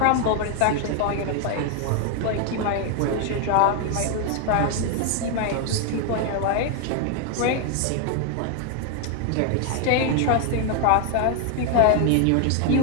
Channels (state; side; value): different; both; correlation 0.01